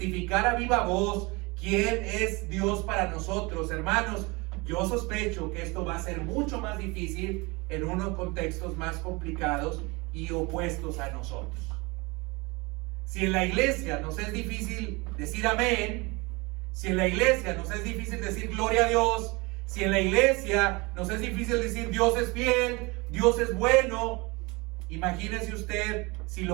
a viva voz quién es Dios para nosotros, hermanos, yo sospecho que esto va a ser mucho más difícil en unos contextos más complicados y opuestos a nosotros. Si en la iglesia nos es difícil decir amén, si en la iglesia nos es difícil decir gloria a Dios, si en la iglesia nos es difícil decir Dios es fiel, Dios es bueno, imagínese usted si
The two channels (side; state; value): left; quieter; 25.8 dB